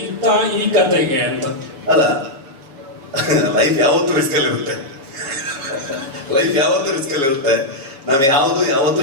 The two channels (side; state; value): left; late; 7.2 ms